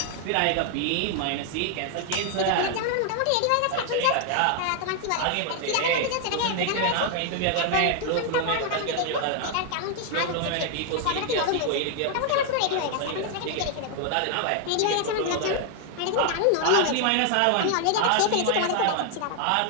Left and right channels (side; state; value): both; different; correlation 0.00